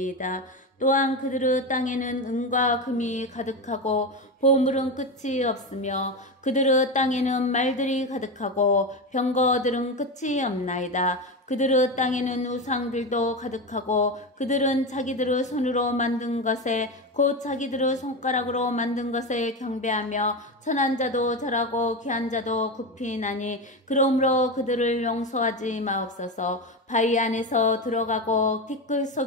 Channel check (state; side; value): normal; both; correlation 0.18